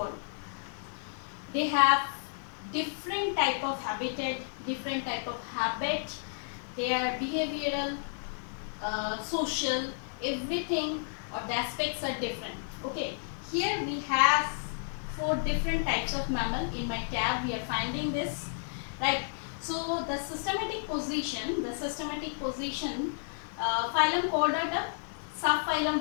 They have different type of habitat, different type of habit. They are behavioral, social, everything or the aspects are different. Okay, here we have 4 different types of mammal. In my tab we are finding this, right? So the systematic position, phylum Chordata, subphylum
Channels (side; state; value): right; silent; digital silence